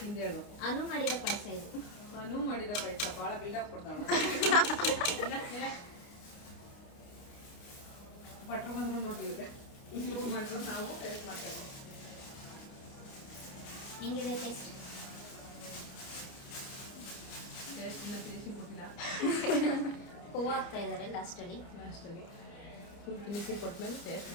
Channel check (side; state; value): right; late; 29 ms